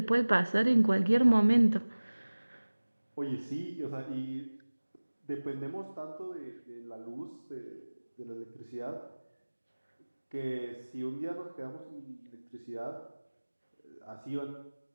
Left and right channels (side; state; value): both; inverted; correlation -1.00